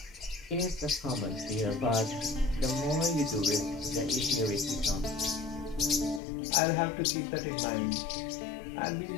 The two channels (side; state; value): right; drops out; at 6.2 s